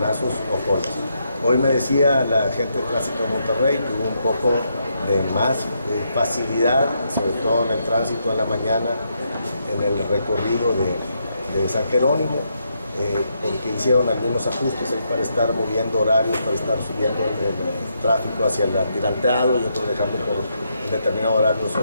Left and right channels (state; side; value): inverted; both; correlation -0.79